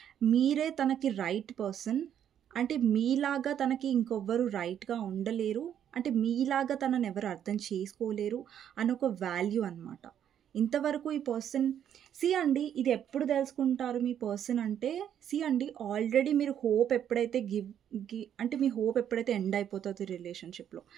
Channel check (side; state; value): left; quieter; 9.6 dB